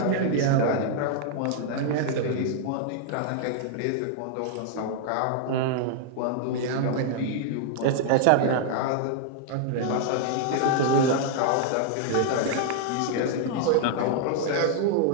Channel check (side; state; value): both; different; correlation -0.01